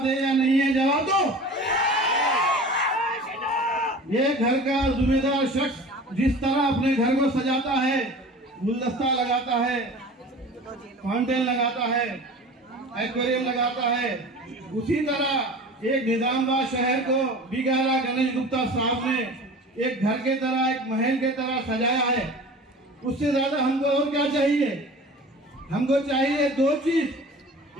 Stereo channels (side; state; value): both; normal; correlation 0.39